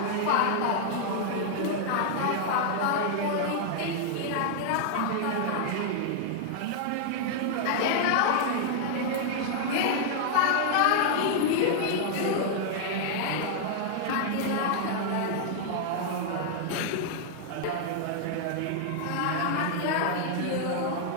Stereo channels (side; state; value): both; different; correlation -0.01